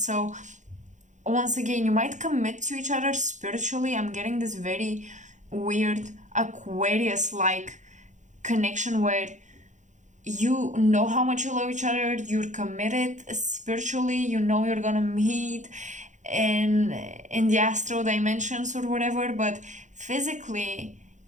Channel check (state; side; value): late; left; 0.35 ms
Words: once again, you might commit to each other spiritually. I'm getting this very weird Aquarius like connection where you know how much you love each other, you're committed spiritually, you know you're gonna meet in the astral dimensions or whatever, but physically